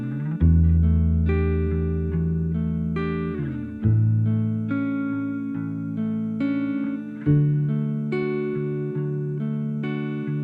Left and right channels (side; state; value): both; identical; correlation 1.00